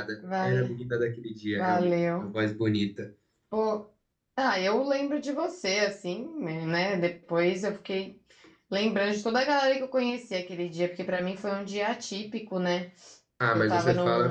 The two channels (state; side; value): identical; both; correlation 1.00